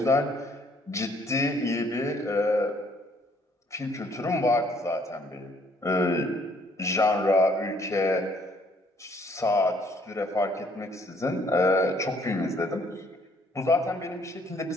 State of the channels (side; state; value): both; normal; correlation 0.64